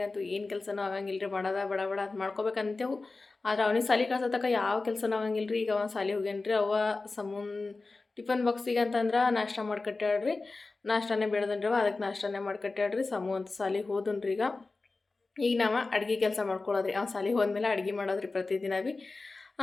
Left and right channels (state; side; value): quieter; right; 3.6 dB